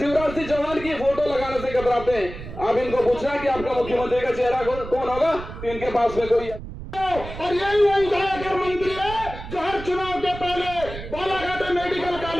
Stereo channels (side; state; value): right; noise; rumble, 11 dB below the sound